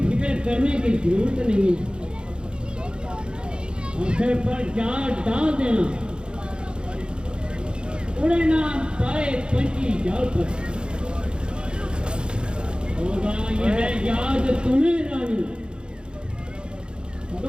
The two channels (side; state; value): left; late; 0.051 ms